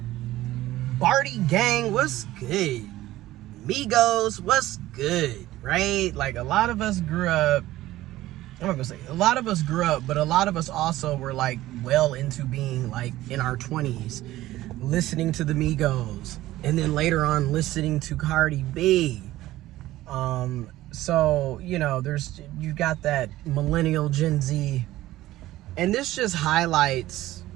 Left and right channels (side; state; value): left; quieter; 15.8 dB